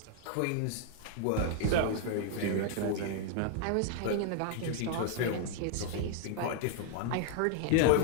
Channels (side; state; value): both; different; correlation 0.00